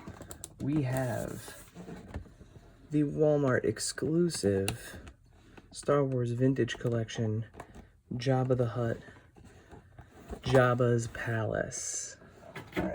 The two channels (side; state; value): both; identical; correlation 1.00